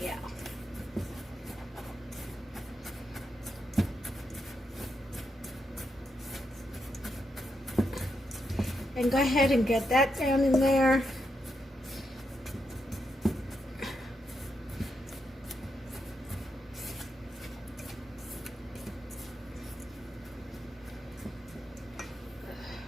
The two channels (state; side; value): normal; both; correlation 0.82